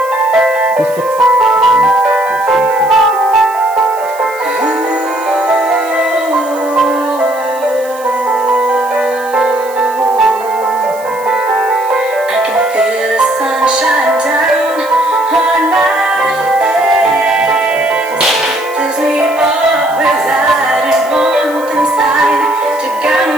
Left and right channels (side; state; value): right; noise; hiss, 20 dB below the sound